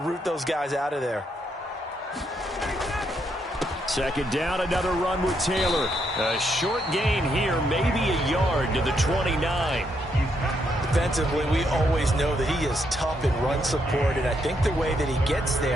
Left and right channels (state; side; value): normal; both; correlation 0.77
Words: those guys out of there. 2nd down, another run with Taylor. A short gain here, maybe a yard to the 29. Defensively, we always know that he is tough in run support, and I think the way that he gets